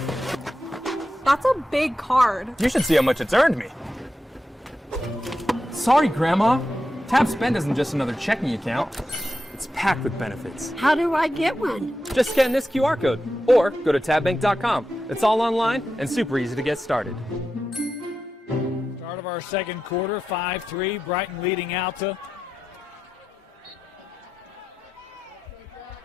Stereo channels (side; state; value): both; normal; correlation 0.90